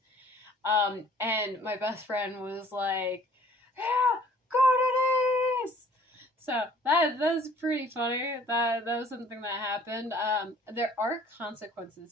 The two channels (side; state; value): both; normal; correlation 0.55